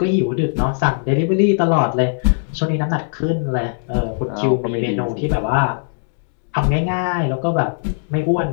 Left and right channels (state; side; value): silent; right; digital silence